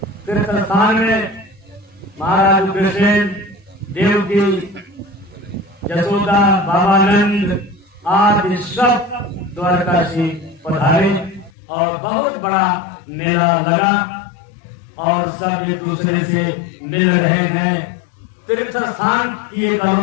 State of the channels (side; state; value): right; drops out; at 11.5 s